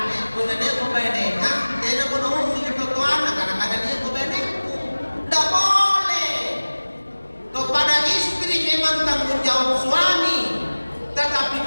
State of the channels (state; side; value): inverted; both; correlation -1.00